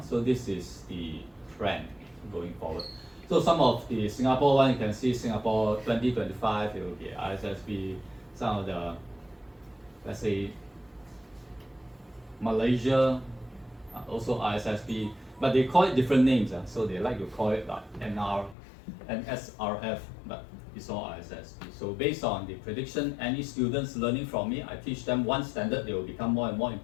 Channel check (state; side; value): drops out; right; at 18.6 s